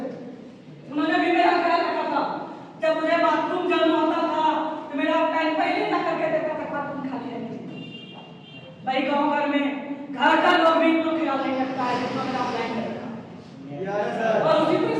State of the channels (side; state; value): both; identical; correlation 1.00